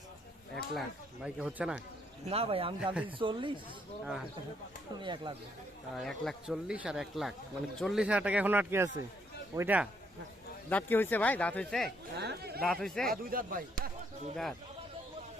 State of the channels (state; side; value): normal; both; correlation 0.72